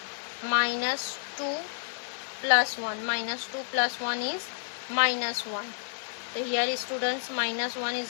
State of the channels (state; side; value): silent; right; digital silence